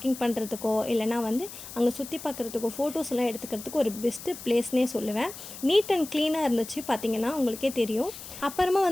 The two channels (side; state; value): left; noise; hiss, 13 dB below the sound